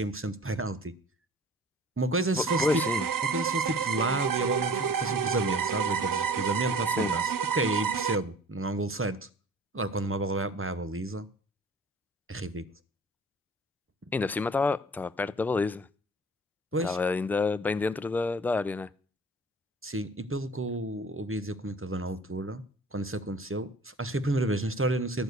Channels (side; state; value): both; normal; correlation 0.46